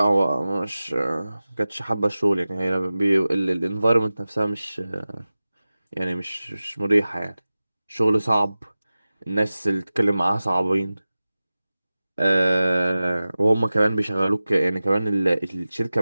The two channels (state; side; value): inverted; both; correlation -0.96